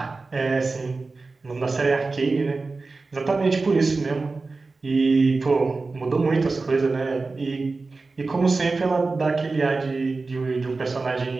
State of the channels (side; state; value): left; quieter; 3.8 dB